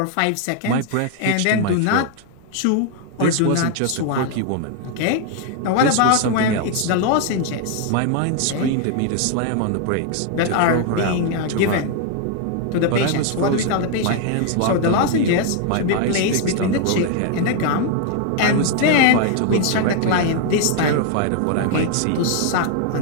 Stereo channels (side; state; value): both; different; correlation 0.00